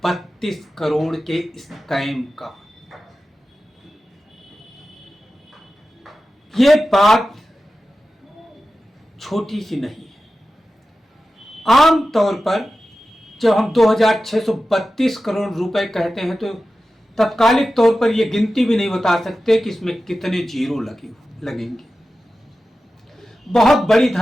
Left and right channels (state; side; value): normal; both; correlation 0.94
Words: करोड़ के स्कैम का। ये बात छोटी सी नहीं है। आम तौर पर जब हम 2632 करोड़ रुपए कहते हैं तो तत्कालिक तौर पर यह गिनती भी नहीं बता सकते कि इसमें कितने जीरो लगेंगे। बहुत बड़ी